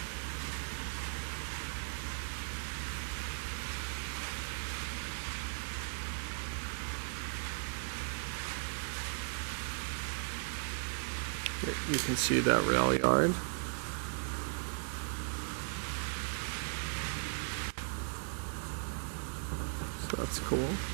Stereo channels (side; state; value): left; silent; 53 dB below the other